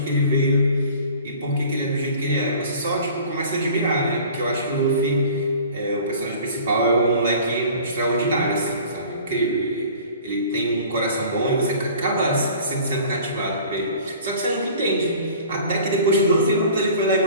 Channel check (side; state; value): both; inverted; correlation -0.46